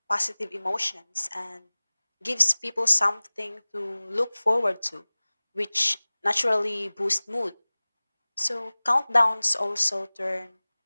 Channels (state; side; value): inverted; both; correlation -1.00